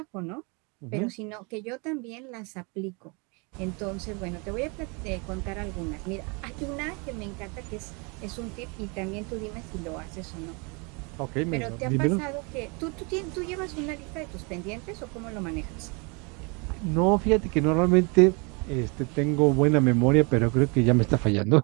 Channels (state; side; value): quieter; left; 31.5 dB